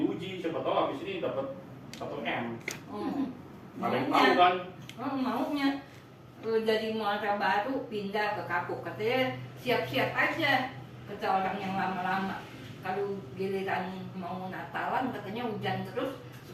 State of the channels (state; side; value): identical; both; correlation 1.00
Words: siapa tahu habis ini dapat 1 M. Ada yang tahu Maunya, kan? maunya dari Muara Baru pindah ke Kapuk, katanya siap-siap aja, kata orang yang lama-lama. Kalau giliran mau Natalan katanya hujan terus,